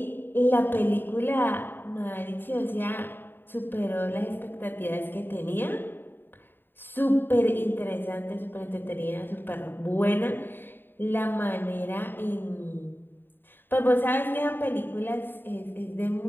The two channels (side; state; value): right; late; 0.096 ms